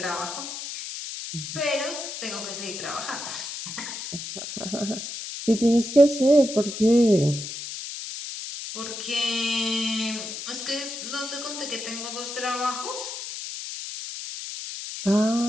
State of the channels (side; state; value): left; noise; hiss, 7 dB below the sound